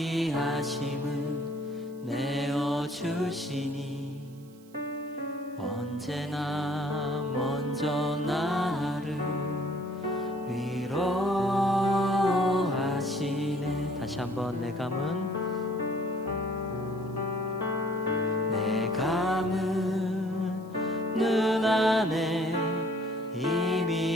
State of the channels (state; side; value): noise; right; hiss, 28 dB below the sound